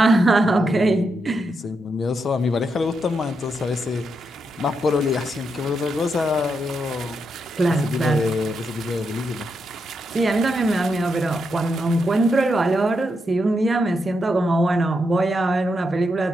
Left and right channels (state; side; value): normal; both; correlation 0.83